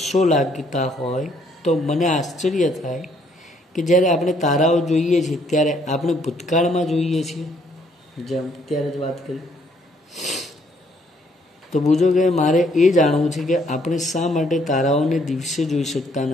લાગતા હોય તો મને આશ્ચર્ય થાય કે જ્યારે આપણે તારાઓ જોઈએ છીએ ત્યારે આપણે ભૂતકાળમાં જોઈએ છીએ, જેમ ત્યારે જ વાત કરી. તો બુજો કે મારે એ જાણવું છે કે આપણે શા માટે તારાઓને દિવસે જોઈ શકતા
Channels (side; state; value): both; normal; correlation 0.67